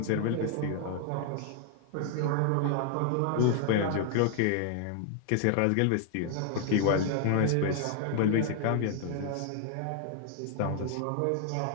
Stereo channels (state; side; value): different; both; correlation 0.00